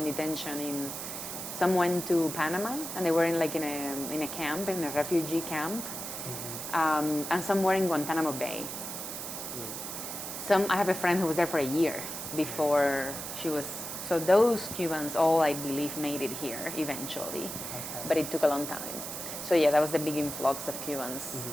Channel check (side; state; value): right; noise; hiss, 7 dB below the sound